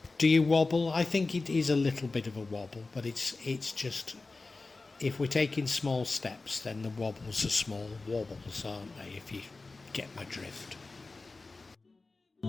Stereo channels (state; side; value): quieter; right; 3.6 dB